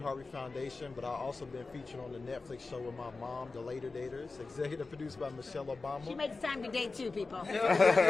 Foundation, but I've also been featured on the Netflix show with my mom, The Later Daters, executive produced by Michelle Obama. She makes time to date too, people.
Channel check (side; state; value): right; quieter; 3.8 dB